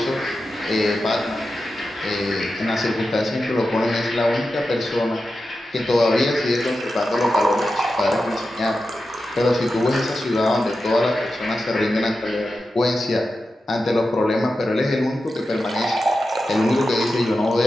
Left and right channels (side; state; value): both; normal; correlation 0.91